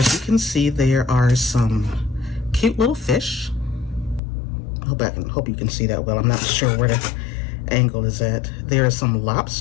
you can see, there are some cute little fish. I hope you can see that well. I'm not sure where the angle is at. There are some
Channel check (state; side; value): drops out; right; at 4.2 s